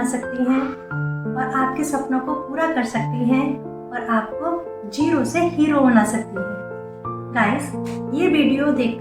सकती हैं और आपके सपनों को पूरा कर सकती हैं और आपको जीरो से हीरो बना सकती हैं। गाइस, ये वीडियो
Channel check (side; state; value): both; identical; correlation 1.00